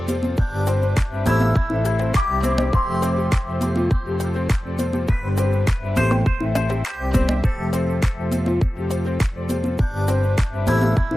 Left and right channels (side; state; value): both; normal; correlation 0.95